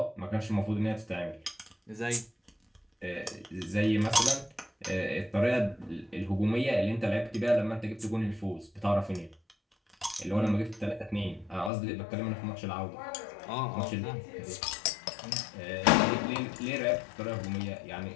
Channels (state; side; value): drops out; right; at 11.7 s